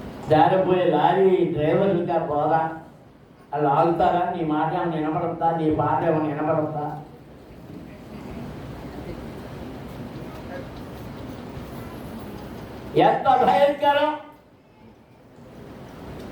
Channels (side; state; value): both; identical; correlation 1.00